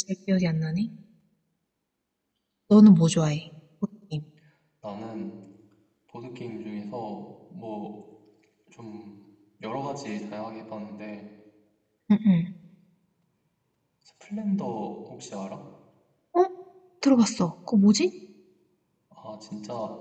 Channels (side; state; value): both; identical; correlation 1.00